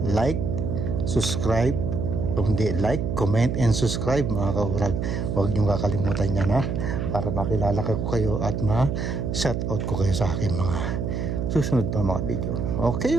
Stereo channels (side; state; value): right; noise; hum, 2 dB below the sound